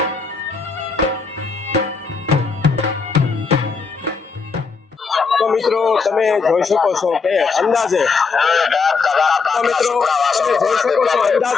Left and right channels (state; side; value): quieter; right; 4.9 dB